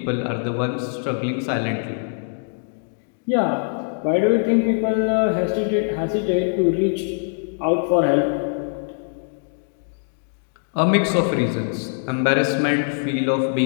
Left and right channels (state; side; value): silent; right; digital silence